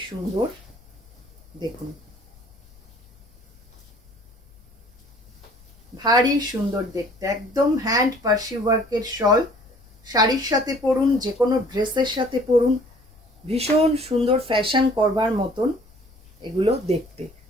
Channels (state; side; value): noise; left; rumble, 27 dB below the sound